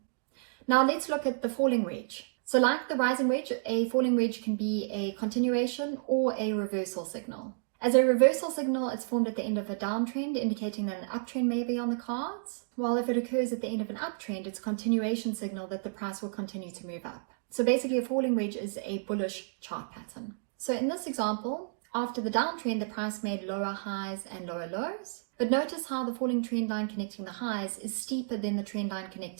Now let's look at the falling wedge. So like the rising wedge, a falling wedge can be a continuation or a reversal signal. As a reversal signal, it's formed at the end of a downtrend, indicating that an uptrend may be on the cards. While if it occurs at the end of an uptrend, it's a continuation signal that the price will continue to move up. So basically a falling wedge is a bullish chart pattern. So in this example, after the downtrend, the price made lower highs and lower lows. But notice how the falling trend line connecting the highs is steeper than the trend line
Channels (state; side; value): silent; left; digital silence